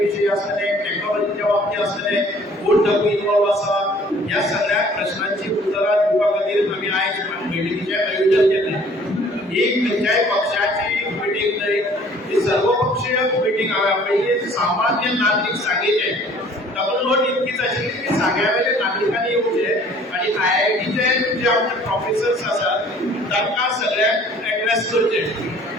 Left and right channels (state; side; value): normal; both; correlation 0.54